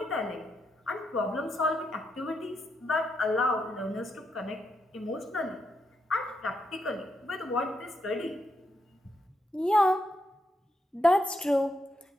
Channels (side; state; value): both; normal; correlation 0.81